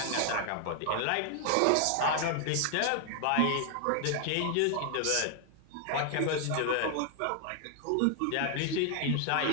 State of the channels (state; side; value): different; both; correlation 0.00